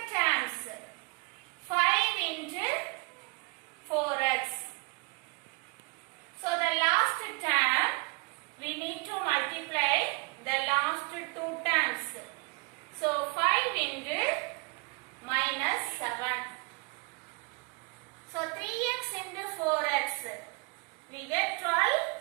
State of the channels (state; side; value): quieter; left; 30.2 dB